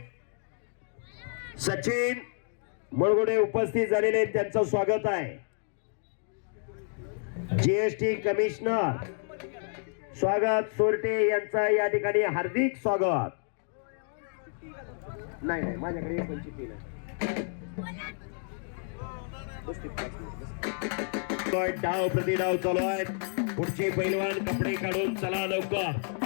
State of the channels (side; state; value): right; silent; 58 dB below the other